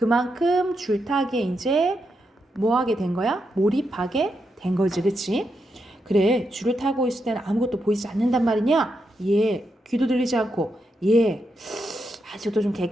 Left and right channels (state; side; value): normal; both; correlation 0.83